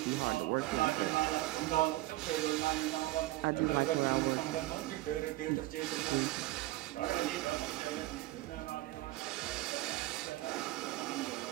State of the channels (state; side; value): quieter; left; 17.6 dB